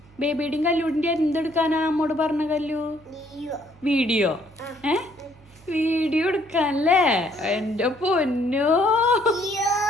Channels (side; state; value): right; noise; hum, 26 dB below the sound